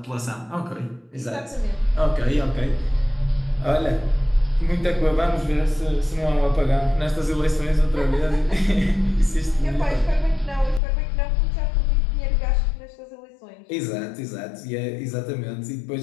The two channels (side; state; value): right; drops out; at 10.8 s